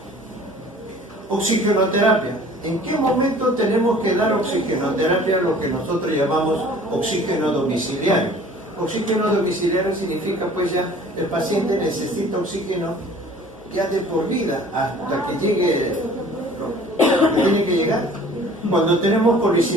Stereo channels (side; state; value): both; normal; correlation 0.49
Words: Oxigenoterapia. ¿En qué momento tenemos que dar oxigenoterapia, lo que nosotros llamamos oxígeno domiciliario? Oxígeno domiciliario significa pues ya el paciente necesita oxígeno ya de por vida hasta que llegue lo que tiene que llegar. Cuando tenemos